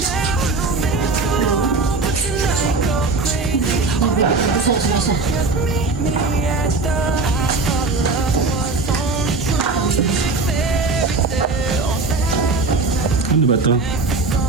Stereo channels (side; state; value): left; quieter; 3.7 dB